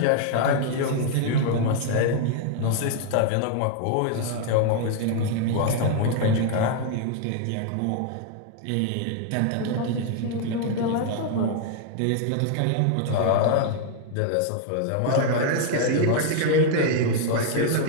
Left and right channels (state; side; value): different; both; correlation 0.00